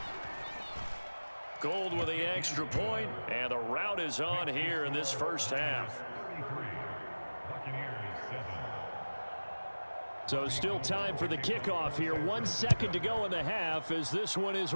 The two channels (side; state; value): both; inverted; correlation -1.00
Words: Gold with the extra point, and the rout is on here in this first half. So still time for the kickoff here. 1 second to go in the half as this one is